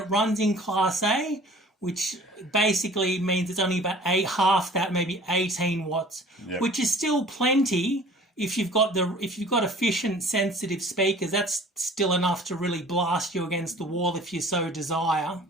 runs in Class A, which basically means it's only about half that, maybe 18 watts, yep. Which is still plenty. If you've got efficient, sensitive speakers, that's still enough to really blast you against the wall if you so desire.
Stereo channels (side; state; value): both; normal; correlation 0.48